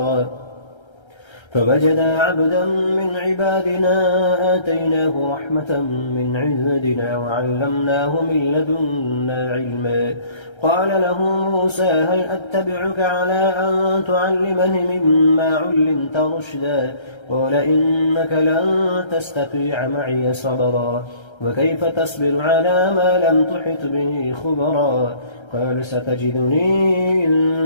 فوجدا عبدا من عبادنا آتيناه رحمة من عندنا وعلمناه من لدنا علما قال له موسى هل أتبعك على أن تعلمني مما علمت رشدا قال إنك لن تستطيع معي صبرا وكيف تصبر على ما لم تحط به خبرا قال ستجدني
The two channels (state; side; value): late; right; 1.3 ms